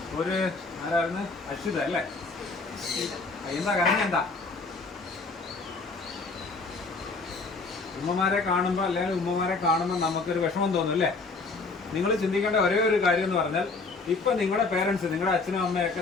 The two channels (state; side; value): quieter; right; 3.9 dB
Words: ഒരു ആരായിരുന്നു? അശ്വിത അല്ലേ? എന്താ കരഞ്ഞ? എന്താ ഉമ്മമാരെ കാണുമ്പോൾ അല്ലെങ്കിൽ ഉമ്മമാരെ കാണുമ്പോൾ നമുക്കൊരു വിഷമം തോന്നും അല്ലേ? നിങ്ങൾ ചിന്തിക്കേണ്ട ഒരേ ഒരു കാര്യം എന്ന് പറഞ്ഞാൽ ഇപ്പം നിങ്ങളുടെ പേരൻസ്, നിങ്ങളുടെ അച്ഛനും അമ്മയൊക്കെ